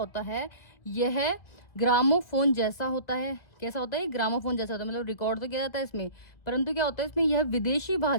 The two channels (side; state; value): right; late; 2.1 ms